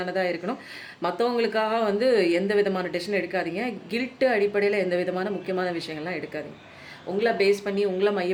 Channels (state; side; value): identical; both; correlation 1.00